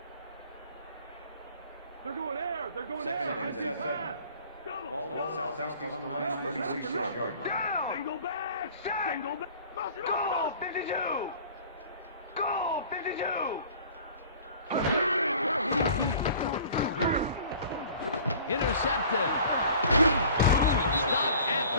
They're going air. They're going Second air. and 7. Ball at Southeast Alumni 46-yard line. Single back. Single back. Goal 52. Goal 52. Intercepted. Stopped at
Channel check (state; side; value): inverted; both; correlation -0.47